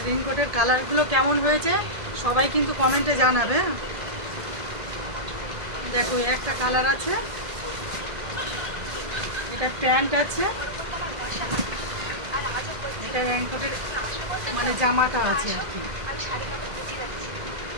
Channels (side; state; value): left; late; 1.7 ms